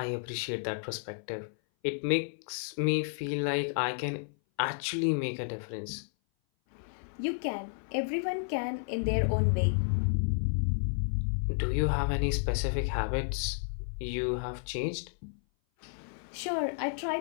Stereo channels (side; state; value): right; silent; 57 dB below the other